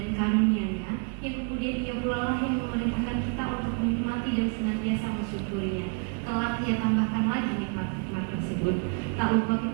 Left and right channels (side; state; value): left; quieter; 38.3 dB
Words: karunia-Nya, yang kemudian Ia pula lah yang memerintahkan kita untuk menikmati dan senantiasa bersyukurnya. Kelak Ia tambahkan lagi nikmat-nikmat tersebut. Tak lupa